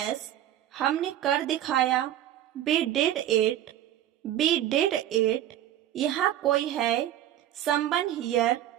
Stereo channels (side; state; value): left; quieter; 12.1 dB